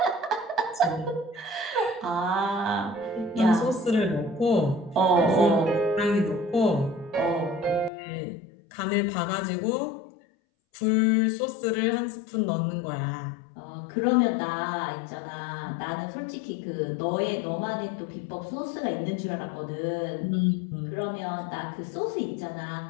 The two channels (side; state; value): right; drops out; at 7.9 s